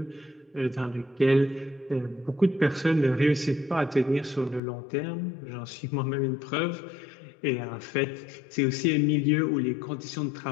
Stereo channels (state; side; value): drops out; right; at 4.6 s